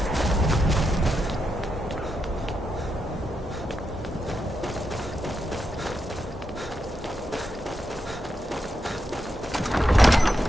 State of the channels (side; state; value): both; normal; correlation 0.85